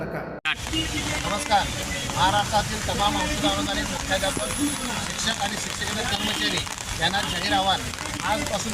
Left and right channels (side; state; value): both; identical; correlation 1.00